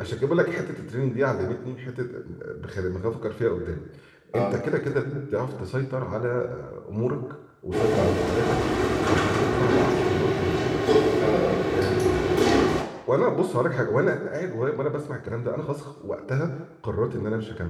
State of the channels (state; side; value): identical; both; correlation 1.00